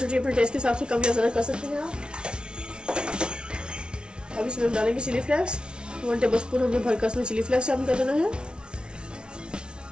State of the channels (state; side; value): late; left; 0.056 ms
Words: अपने टेस्ट के हिसाब से कम या ज्यादा कर सकते हैं आप। अब इसमें हम डालेंगे चिली फ्लेक्स, 1 टेबलस्पून हमने भरकर इसमें चिली फ्लेक्स शामिल कर देना है।